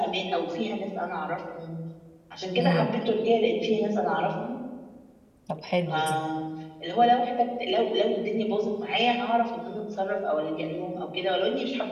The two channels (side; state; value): both; identical; correlation 1.00